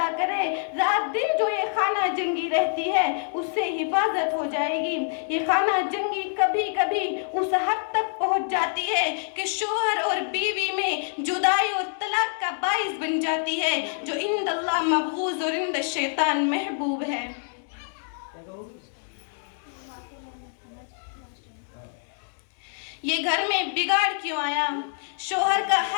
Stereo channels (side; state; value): right; silent; digital silence